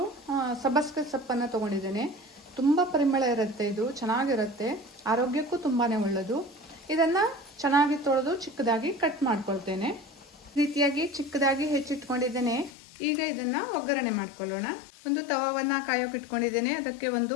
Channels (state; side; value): drops out; right; at 12.7 s